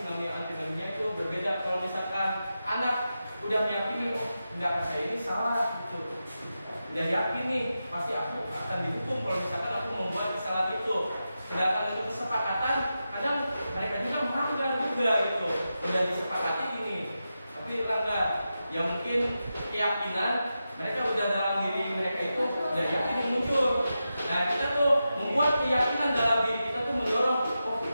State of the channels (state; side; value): inverted; both; correlation -0.90